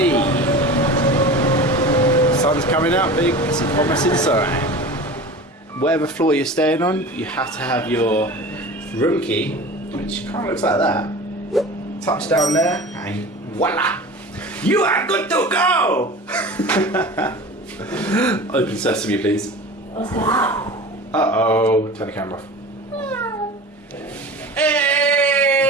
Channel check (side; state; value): both; normal; correlation 0.35